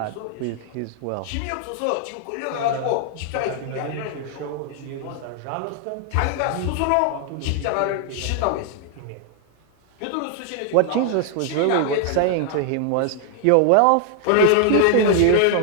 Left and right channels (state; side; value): different; both; correlation 0.00